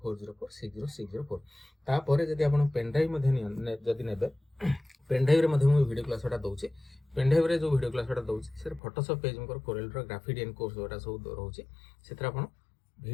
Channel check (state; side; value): drops out; right; at 8.8 s